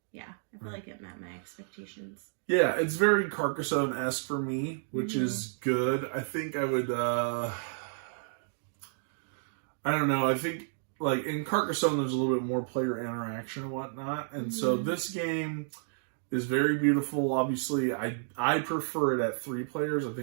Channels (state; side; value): silent; left; digital silence